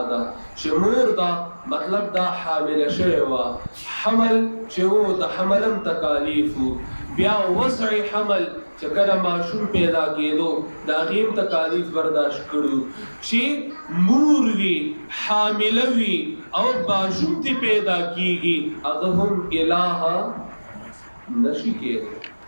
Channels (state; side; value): inverted; both; correlation -1.00